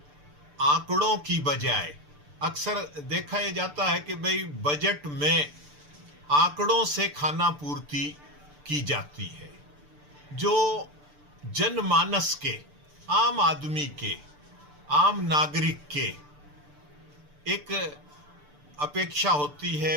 आंकड़ों की बजाय, अक्सर देखा यह जाता है कि भाई बजट में आंकड़ों से खाना पूर्ति की जाती है। जो जनमानस के, आम आदमी के, आम नागरिक के एक अपेक्षा होती है,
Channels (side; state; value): left; late; 6.8 ms